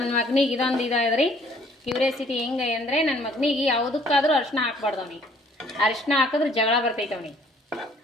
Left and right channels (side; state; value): both; normal; correlation 0.59